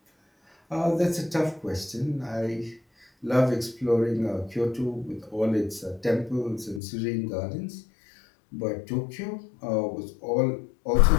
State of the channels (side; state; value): right; drops out; at 6.8 s